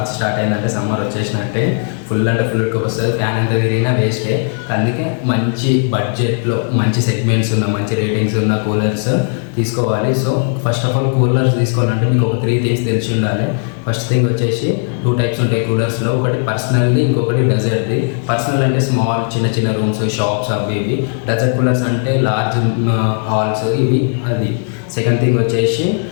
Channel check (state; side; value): silent; right; 55 dB below the other